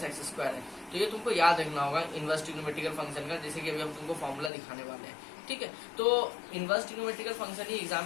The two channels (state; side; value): drops out; right; at 4.5 s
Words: - x स्क्वायर है। तो ये तुमको याद रखना होगा इनवर्स ट्रिग्नोमेट्रिकल फंक्शन का, जैसे कि अभी हम तुमको फॉर्मूला दिखाने वाले हैं। ठीक है, तो इनवर्स ट्रिग्नोमेट्रिकल फंक्शन ही एग्जाम